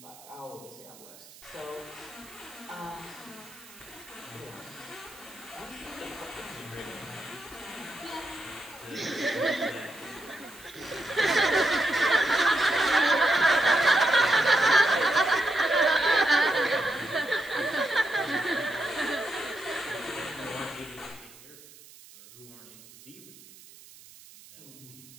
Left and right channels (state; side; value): noise; right; hiss, 21 dB below the sound